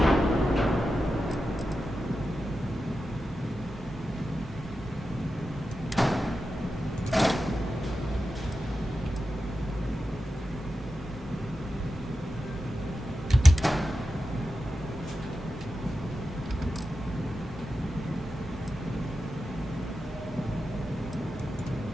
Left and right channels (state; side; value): normal; both; correlation 0.91